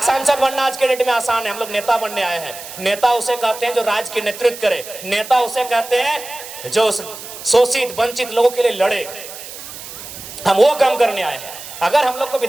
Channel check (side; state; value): right; noise; hiss, 13 dB below the sound